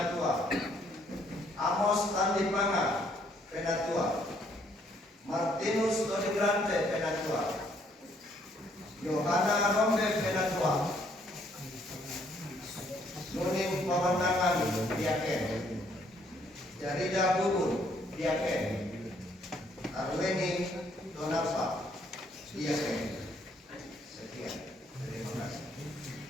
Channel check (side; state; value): both; normal; correlation 0.67